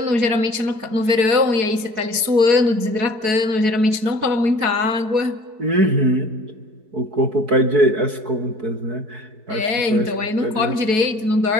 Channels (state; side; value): late; left; 4.6 ms